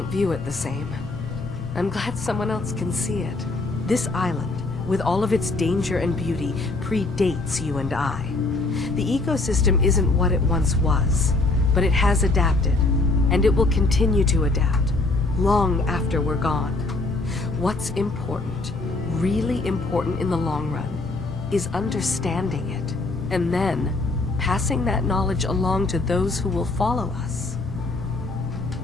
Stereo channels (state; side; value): quieter; right; 3.2 dB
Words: view it the same. I'm glad someone else can see it. This island, with all of its danger and beauty, predates you and I. The ecosystem isn't what it once was, but it has adapted, and it will continue to adapt, long after we're gone. What's important, really important in the long run, is understanding it, and then passing that knowledge along to those who will follow us.